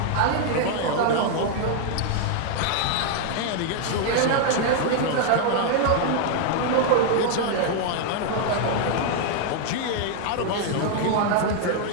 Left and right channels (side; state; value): both; different; correlation 0.00